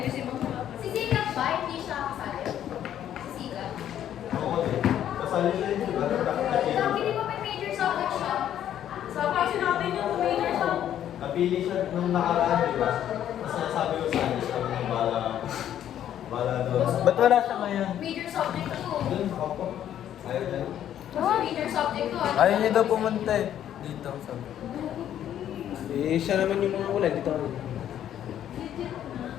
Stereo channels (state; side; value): quieter; right; 10.8 dB